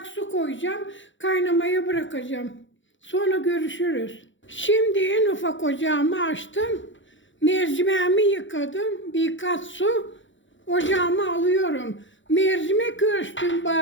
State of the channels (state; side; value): late; right; 0.55 ms